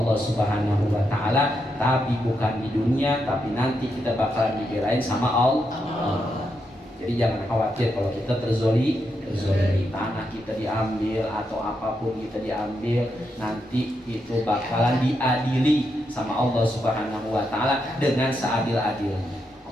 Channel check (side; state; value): both; normal; correlation 0.83